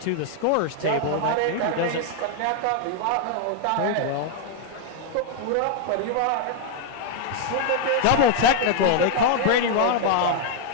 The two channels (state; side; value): different; both; correlation 0.00